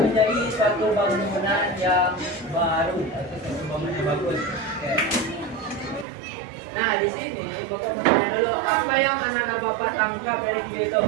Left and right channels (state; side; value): drops out; left; at 6.1 s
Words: suatu bangunan yang baru atau suatu bangunan yang bagus. Oke. Nah, di sini Bapak mau tanya dulu apa yang anak-anak Bapak tangkap dari video itu?